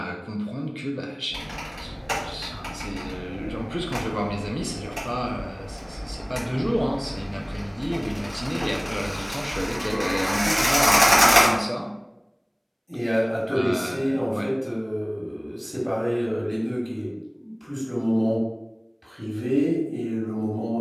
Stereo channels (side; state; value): both; identical; correlation 1.00